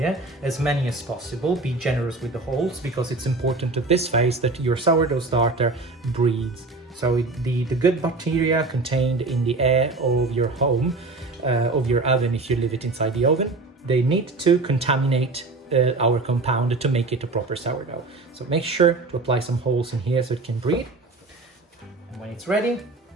as many as possible. Be generous with the holes because it's important at this phase that your sourdough starter breathes. So the good bacteria contained in the air of your home, of your oven if you leave it inside the oven, they need to contaminate our compound to make it a proper sourdough. So make sure to apply some holes in here so it can breathe. And when it's ready,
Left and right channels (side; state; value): left; quieter; 3.4 dB